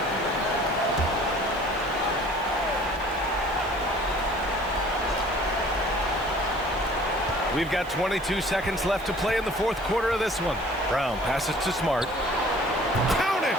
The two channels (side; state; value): right; noise; hiss, 24 dB below the sound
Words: We've got 22 seconds left to play in the fourth quarter of this one. Brown passes to Smart. Count it!